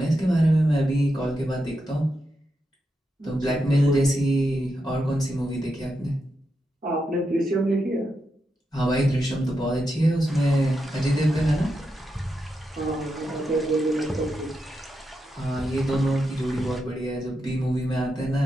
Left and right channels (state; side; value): normal; both; correlation 0.86